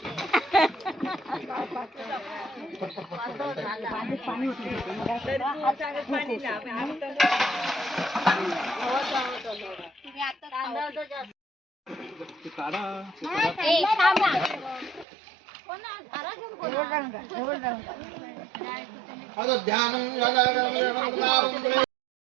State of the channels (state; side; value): drops out; left; at 15.1 s